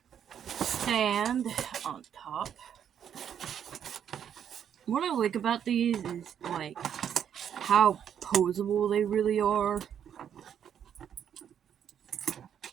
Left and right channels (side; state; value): left; quieter; 8.9 dB